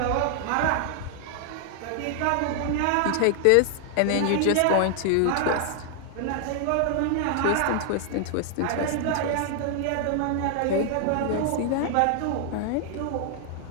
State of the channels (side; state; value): both; different; correlation 0.00